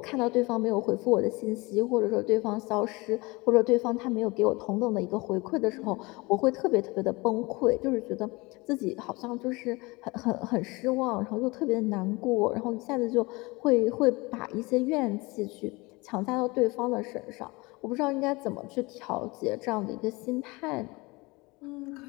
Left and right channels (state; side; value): quieter; right; 24.2 dB